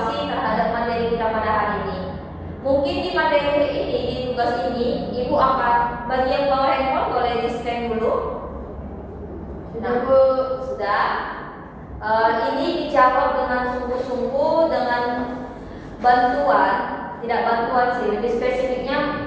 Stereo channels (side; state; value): both; identical; correlation 1.00